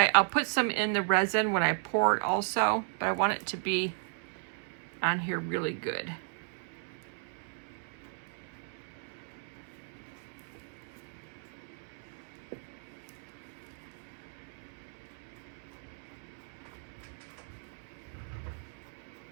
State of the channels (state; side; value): silent; left; 55 dB below the other